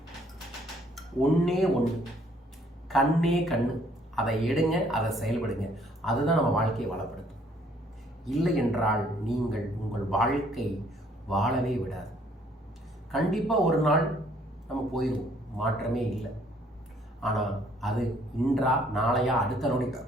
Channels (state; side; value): normal; both; correlation 0.63